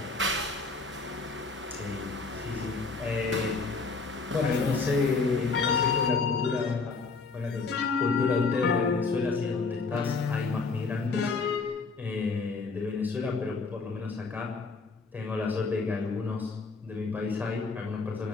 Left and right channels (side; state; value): right; quieter; 4.2 dB